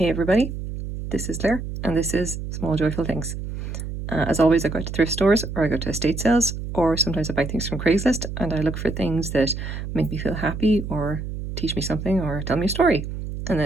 everybody, this is Claire and this is Small Joyful Things. As always, I go to thrift stores or I go to estate sales, or sometimes I buy things from Craigslist and I look for things that make me feel happy or teach me something or tell me a story. And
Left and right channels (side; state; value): right; noise; hum, 7 dB below the sound